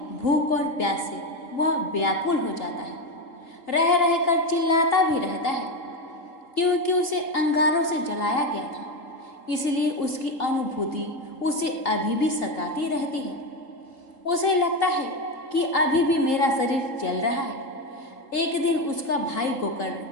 भूख और प्यास से वह व्याकुल हो जाता है। रह रहकर चिल्लाता भी रहता है क्योंकि उसे अंगारों से जलाया गया था। इसलिए उसकी अनुभूति उसे अभी भी सताती रहती है। उसे लगता है कि अभी भी मेरा शरीर जल रहा है। एक दिन उसका भाई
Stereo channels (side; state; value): right; late; 3.8 ms